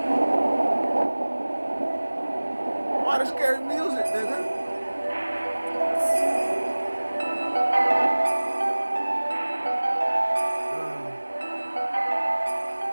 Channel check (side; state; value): both; inverted; correlation -1.00